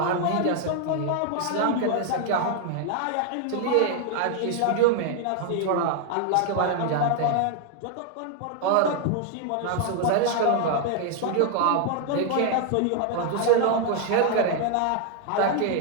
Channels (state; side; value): different; both; correlation 0.00